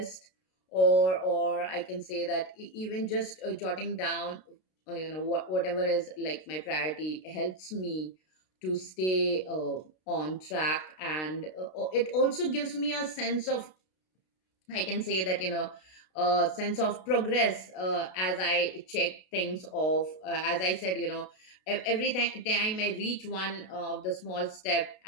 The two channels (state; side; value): late; right; 32 ms